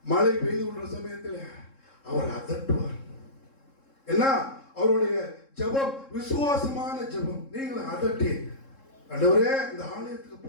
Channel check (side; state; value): right; late; 3.7 ms